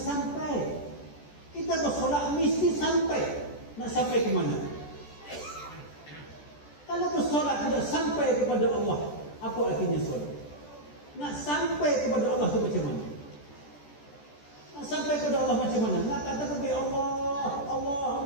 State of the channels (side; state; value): right; late; 14 ms